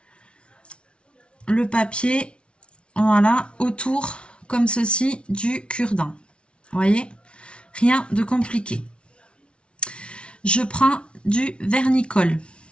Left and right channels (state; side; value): late; right; 0.059 ms